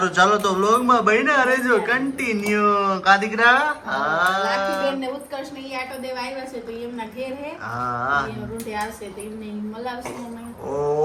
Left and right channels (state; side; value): identical; both; correlation 1.00